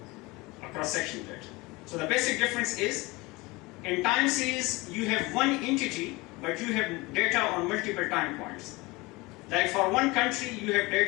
a cross-section data. So the basic difference is, in time series you have one entity, but you have data on multiple time points. Like for one country you have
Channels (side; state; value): right; quieter; 23.2 dB